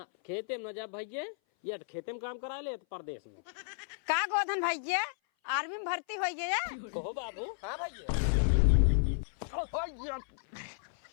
खेते में न जा भैया, या तो खेते में काम करा ले तो परदेश में। का गोधन भैया आर्मी में भर्ती हो गया? कहो बाबू। हाँ भैया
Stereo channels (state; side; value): silent; right; 56 dB below the other